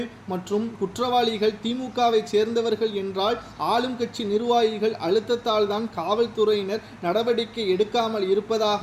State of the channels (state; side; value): identical; both; correlation 1.00